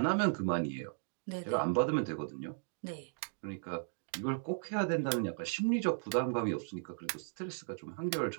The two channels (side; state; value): left; silent; digital silence